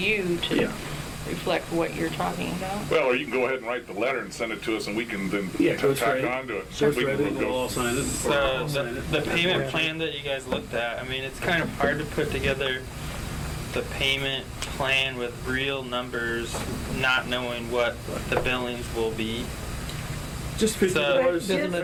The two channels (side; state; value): both; identical; correlation 1.00